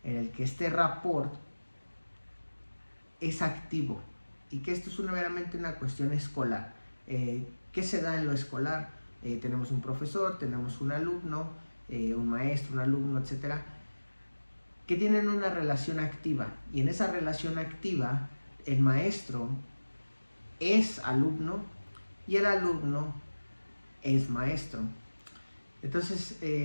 En el que este rapport es activo y que esto es meramente una cuestión escolar. ¿Qué se da en lo escolar? Tenemos un profesor, tenemos un alumno, un maestro, un alumno, etcétera, que tienen una relación activa, y en esa relación activa el maestro es alumno y el alumno es maestro. Entonces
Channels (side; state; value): both; inverted; correlation -1.00